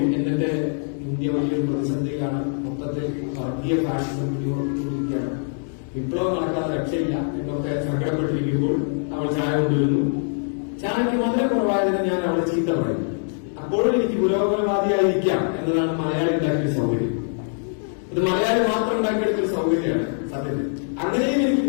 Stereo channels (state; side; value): silent; right; 62 dB below the other